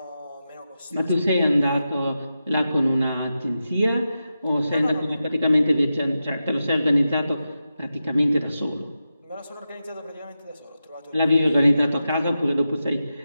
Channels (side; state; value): both; inverted; correlation -0.90